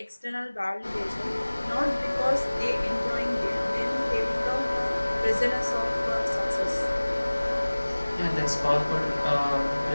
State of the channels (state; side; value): inverted; both; correlation -1.00